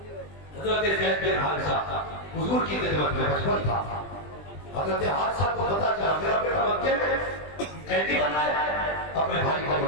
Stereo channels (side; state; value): right; late; 20 ms